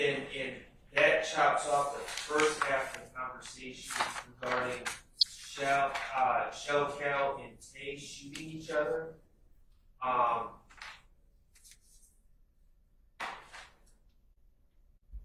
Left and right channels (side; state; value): both; identical; correlation 1.00